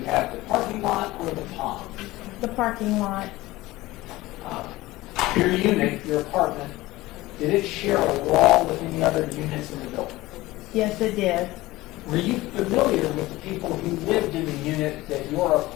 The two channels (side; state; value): right; quieter; 18.6 dB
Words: have the parking lot or the pond? The parking lot. Your unit, your apartment, did it share a wall with any other units in the building? Yes, it did. Were you familiar with the people who lived in the unit that your